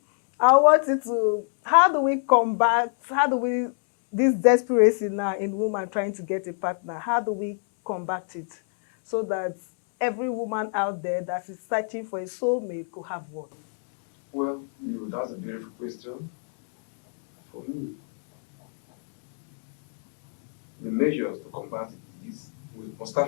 I want you to, this desperation now in woman trying to get a partner, how do we combat it so that every woman out there that is searching for a soulmate could have one? Well, that's a beautiful question. For me, the measures to combat it is we must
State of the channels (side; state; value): right; silent; 62 dB below the other